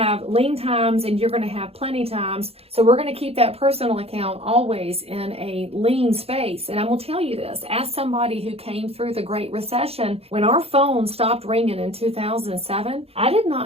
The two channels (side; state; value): left; late; 0.29 ms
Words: lean times and you're going to have plenty times. So we're going to keep that personal account always in a lean space. And I will tell you this, as somebody who came through the Great Recession, when our phone stopped ringing in 2007, I did